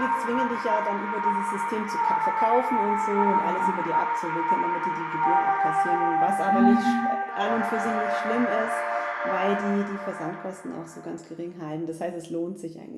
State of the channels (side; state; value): both; identical; correlation 1.00